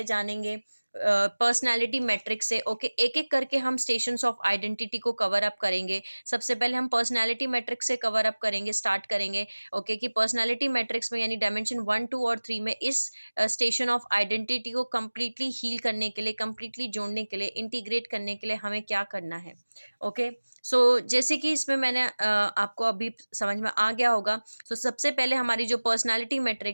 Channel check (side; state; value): both; inverted; correlation -1.00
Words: जानेंगे पर्सनैलिटी मैट्रिक्स से। ओके, एक एक करके हम स्टेशंस ऑफ आइडेंटिटी को कवर अप करेंगे। सबसे पहले हम पर्सनैलिटी मैट्रिक्स से कवर अप करेंगे, स्टार्ट करेंगे। ओके, कि पर्सनैलिटी मैट्रिक्स में, यानी डायमेंशन 1, 2 और 3 में इस स्टेशन ऑफ आइडेंटिटी को कम्प्लीटली हील करने के लिए, कम्प्लीटली जोड़ने के लिए, इंटीग्रेट करने के लिए हमें क्या करना है। ओके, सो जैसे कि इसमें मैंने आपको अभी समझ में आ गया होगा। तो सबसे पहले हमारी जो पर्सनैलिटी